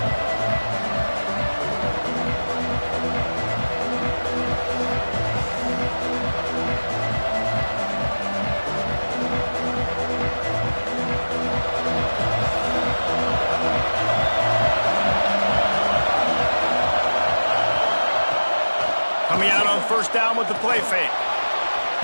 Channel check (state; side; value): inverted; both; correlation -1.00